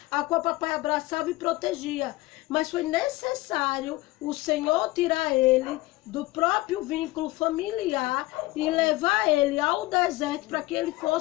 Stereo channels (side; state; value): right; quieter; 19.6 dB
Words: a qual o papai abraçava e protegia. Mas foi necessário o Senhor tirar ele do próprio vínculo familiar e levar ele ao deserto para que ele